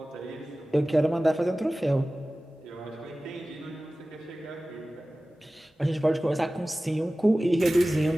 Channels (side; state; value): both; normal; correlation 0.97